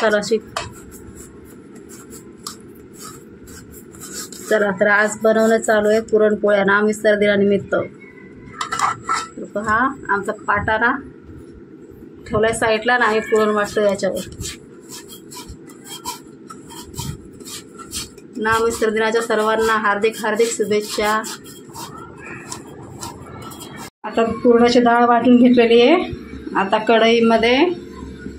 अशी. चला तर आज बनवणं चालू आहे पुरणपोळ्या ना मिस्टर दिनानिमित्त. पहा आमचा पाटा ना ठेवलाय साईडला ना, हे पुरण वाटतं याच्यावर ना. मिस्टर दिनाच्या सर्वांना हार्दिक हार्दिक शुभेच्छा. आता पुरणाची डाळ वाटून घेतलेली आहे. आता कढईमध्ये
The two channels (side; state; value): both; identical; correlation 1.00